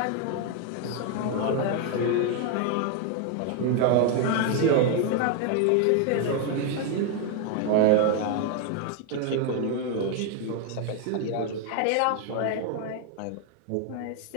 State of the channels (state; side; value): different; both; correlation 0.01